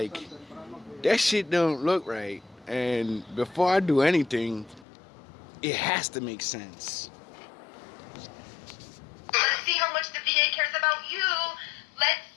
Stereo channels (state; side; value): drops out; right; at 4.9 s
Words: that shit don't look right. And before I do anything, it has to make sense. Let's see how much the VA cares about you. Let's